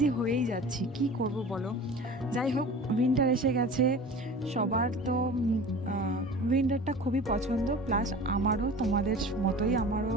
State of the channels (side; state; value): both; normal; correlation 0.38